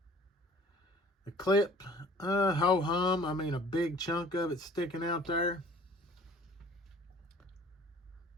The clip, ho-hum. I mean, a big chunk of it sticking out there.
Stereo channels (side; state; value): both; normal; correlation 0.50